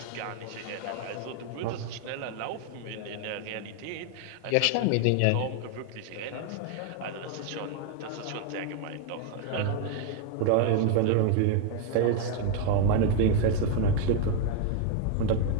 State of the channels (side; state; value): both; different; correlation 0.01